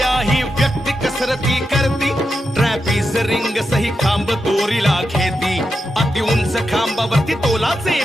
ही व्यक्ती कसरती करती, ट्रॅपिस रिंग सही खांब दोरीला घेती, अति उंच खांबावरती तोलाचे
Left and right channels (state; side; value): normal; both; correlation 0.87